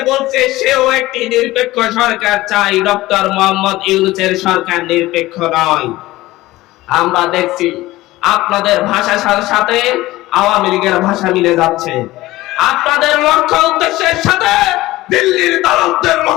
বলছে সেও একটি নিরপেক্ষ সরকার চাই, ডক্টর মোহাম্মদ ইউনূসের সরকার নিরপেক্ষ নয়। আমরা দেখছি আপনাদের ভাষার সাথে আওয়ামী লীগের ভাষা মিলে যাচ্ছে, আপনাদের লক্ষ্য উদ্দেশ্যের সাথে দিল্লির দালালদের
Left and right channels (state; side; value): quieter; right; 17.9 dB